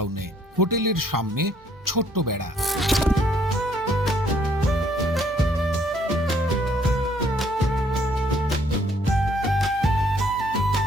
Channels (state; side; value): normal; both; correlation 0.66